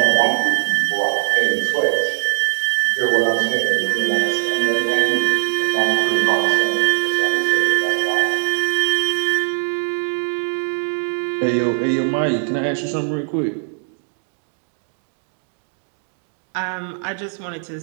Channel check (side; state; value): left; silent; 57 dB below the other